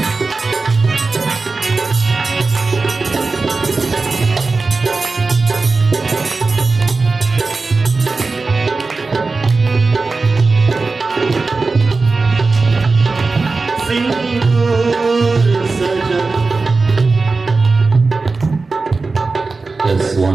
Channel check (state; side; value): quieter; left; 3.9 dB